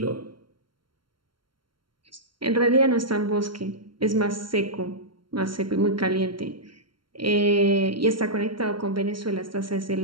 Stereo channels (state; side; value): late; left; 0.73 ms